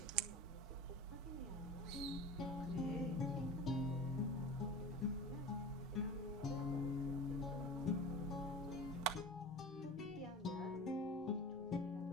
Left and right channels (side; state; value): both; normal; correlation 0.34